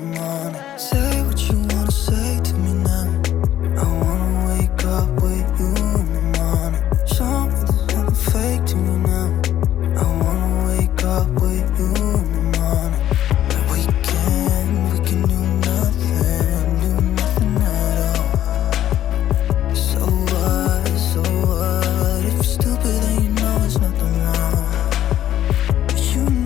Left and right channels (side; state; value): right; quieter; 11.9 dB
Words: morning. Say what you wanna say to me now. I wanna wake up with you